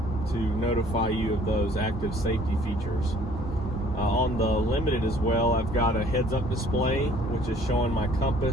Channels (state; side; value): normal; both; correlation 0.56